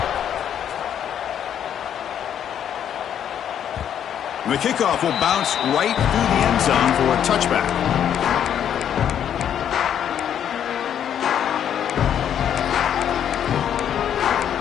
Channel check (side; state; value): right; quieter; 9.4 dB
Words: The kickoff will bounce right through the end zone for a touchback.